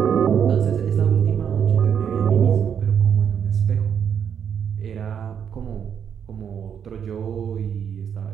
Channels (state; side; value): quieter; left; 8.0 dB